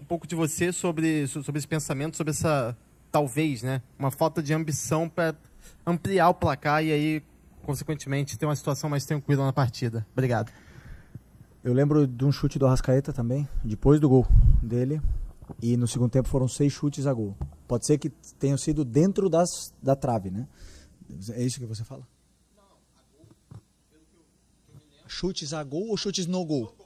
de você sobre esse pensamento, sobre essa, talvez, né, uma falta de ambição para ampliar o placar e aí, consequentemente, ter uma situação mais tranquila na partida. Obrigado. Eu lembro de um chute do Arrascaeta também, depois do gol dele, e no segundo tempo foram 6 chutes a gol. Pode ser que tenham sido dentro da trave, né? É isso que você fala? Não, a gol, pelo que eu me lembro. Chutes a gol ou chutes no gol? No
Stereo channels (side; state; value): both; identical; correlation 1.00